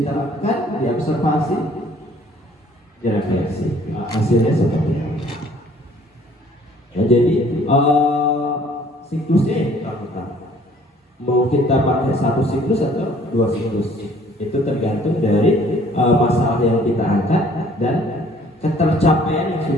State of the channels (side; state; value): both; normal; correlation 0.57